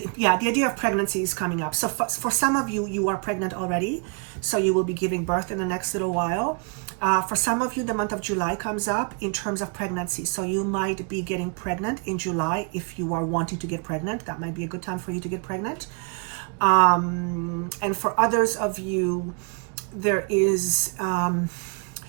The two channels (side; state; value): left; quieter; 35.2 dB